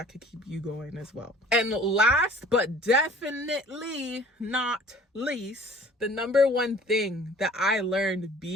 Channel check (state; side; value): normal; both; correlation 0.50